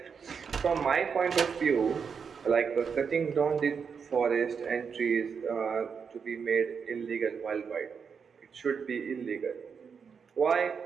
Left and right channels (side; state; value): left; quieter; 6.2 dB